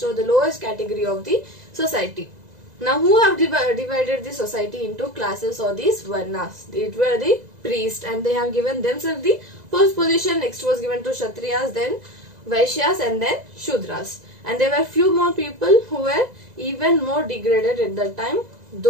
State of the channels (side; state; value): left; late; 2.0 ms